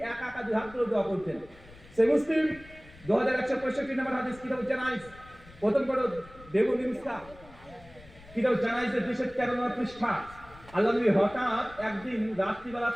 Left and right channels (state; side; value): noise; left; rumble, 21 dB below the sound